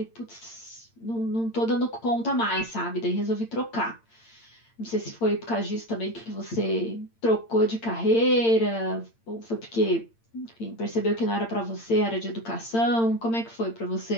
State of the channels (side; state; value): right; late; 8.8 ms